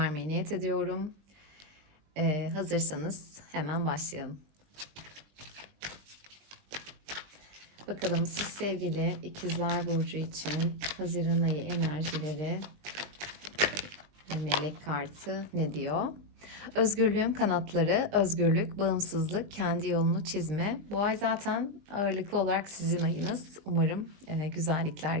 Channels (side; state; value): left; late; 20 ms